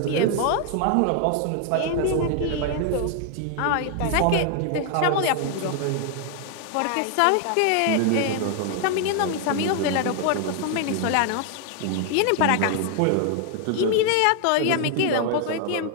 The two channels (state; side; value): different; both; correlation 0.00